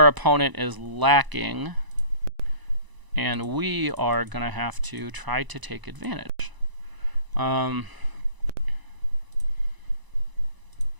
opponent is lacking, and we are going to have to try to take advantage. Okay.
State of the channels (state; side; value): late; left; 1.0 ms